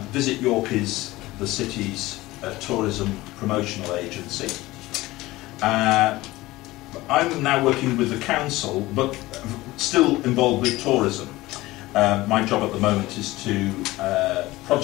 Visit York is the city's tourism promotional agency. I'm now working with the council, but still involved with tourism. My job at the moment is to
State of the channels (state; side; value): quieter; right; 18.7 dB